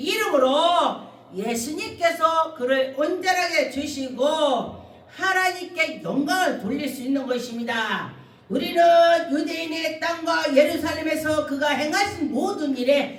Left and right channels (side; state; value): both; identical; correlation 1.00